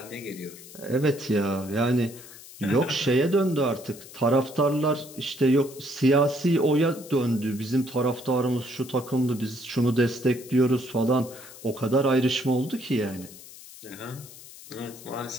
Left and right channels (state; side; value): noise; left; hiss, 17 dB below the sound